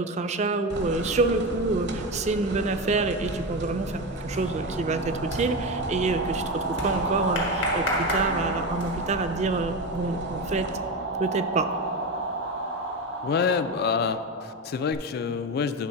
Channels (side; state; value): both; normal; correlation 0.18